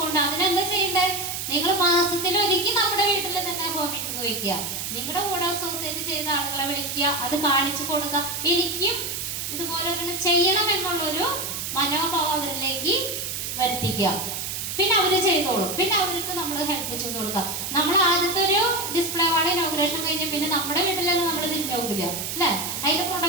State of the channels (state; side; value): noise; right; hiss, 4 dB below the sound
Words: അതിനെന്താ ചെയ്യണ്ടേ, നിങ്ങൾ മാസത്തിൽ ഒരിക്കൽ നമ്മുടെ വീട്ടിൽ തന്നെ ഹോം മീറ്റിംഗ് വയ്ക്കുക, നിങ്ങളുടെ കൂടെ അസോസിയേറ്റ് ചെയ്ത ആളുകളെ വിളിക്കുക, അത് കാണിച്ചു കൊടുക്കുക. എനിക്കും ഇതുപോലെ ചെയ്യണം എന്നുള്ളൊരു മനോഭാവം അവരിലേക്ക് വരുത്തിക്കുക. പിന്നെ അവര് ചെയ്തോളും. പിന്നെ അവർക്ക് നമ്മൾ ഹെൽപ്പ് ചെയ്ത് കൊടുക്കുക. നമ്മൾ ആദ്യത്തെ ഒരു ഡിസ്പ്ലേ വാർഡ് ഇനോഗ്രേഷൻ കഴിഞ്ഞ് പിന്നെ നമ്മുടെ വീട്ടിലൊന്നും നമ്മൾ തിരിഞ്ഞു നോക്കില്ല അല്ലെ. അതിന്റെ